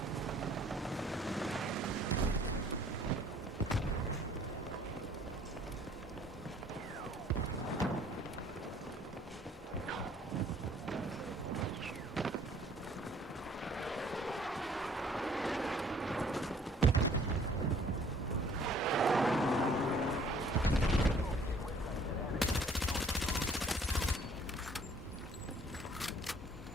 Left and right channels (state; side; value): normal; both; correlation 0.58